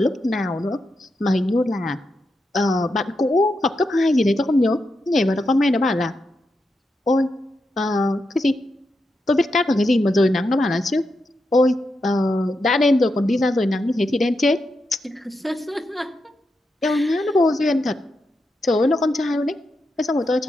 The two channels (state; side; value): normal; both; correlation 0.86